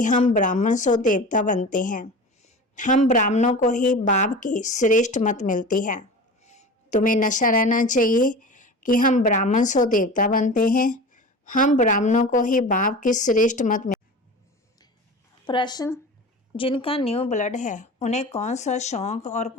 हम ब्राह्मण सो देवता बनते हैं। हम ब्राह्मणों को ही बाप की श्रेष्ठ मत मिलती है। तुम्हें नशा रहना चाहिए कि हम ब्राह्मण सो देवता बनते हैं। हम ब्राह्मणों को ही बाप की श्रेष्ठ मत मिलती। प्रश्न, जिनका न्यू ब्लड है उन्हें कौन सा शौक और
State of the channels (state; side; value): normal; both; correlation 0.34